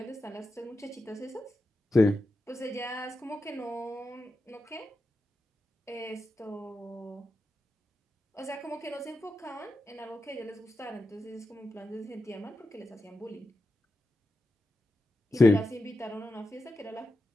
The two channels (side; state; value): both; normal; correlation 0.90